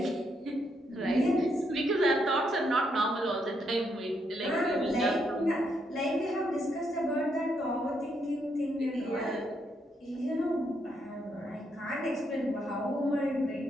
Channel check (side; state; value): both; normal; correlation 0.77